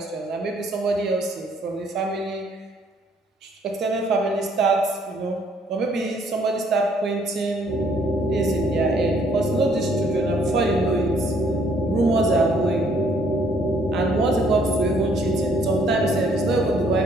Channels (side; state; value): both; normal; correlation 0.65